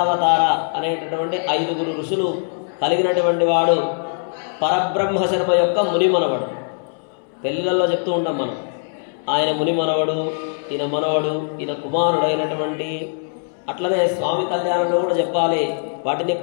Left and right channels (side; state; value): right; silent; 65 dB below the other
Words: అనేటటువంటి 5 ఋషులు కలిగినటువంటి వాడు. పరబ్రహ్మ శర్మ యొక్క ముని మనవడు. పెళ్ళిళ్ళల్లో చెప్తూ ఉంటాం మనం, ఆయన ముని మనవడు, ఈయన మనవడు, ఈయన కుమారుడైనటువంటి. అట్లనే స్వామి కళ్యాణంలో కూడా చెప్పాలి, వాటిని